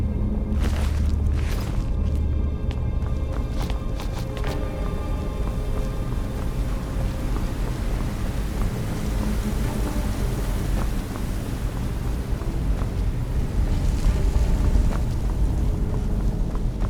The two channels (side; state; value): both; identical; correlation 1.00